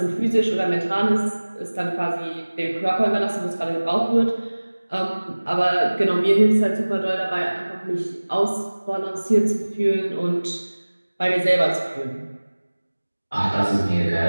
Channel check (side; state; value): both; inverted; correlation -1.00